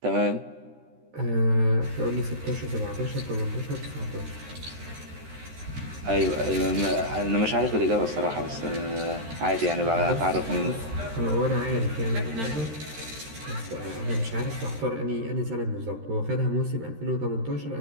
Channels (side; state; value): left; late; 13 ms